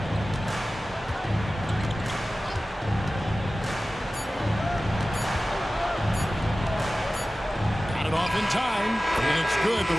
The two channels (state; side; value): normal; both; correlation 0.96